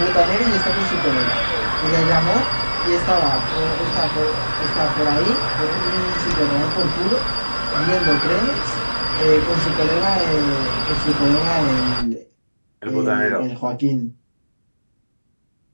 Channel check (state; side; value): inverted; both; correlation -1.00